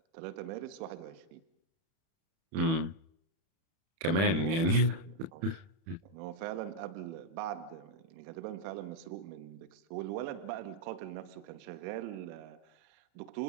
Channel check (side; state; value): left; late; 31 ms